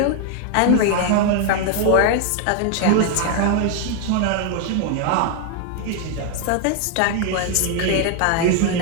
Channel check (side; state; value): both; different; correlation 0.01